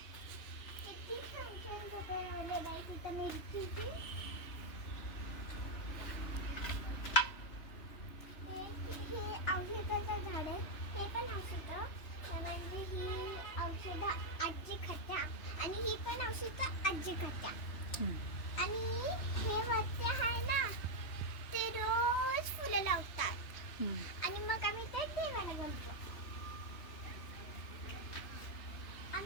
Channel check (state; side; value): late; right; 2.9 ms